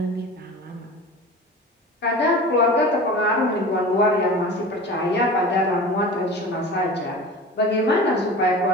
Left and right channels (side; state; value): both; normal; correlation 0.35